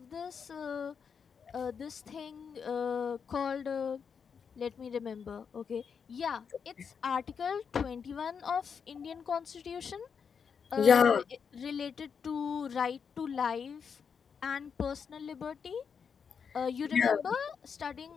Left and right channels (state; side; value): quieter; right; 6.5 dB